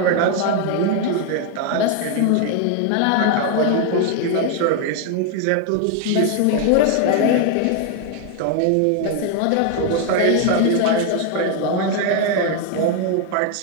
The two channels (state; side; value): different; both; correlation 0.00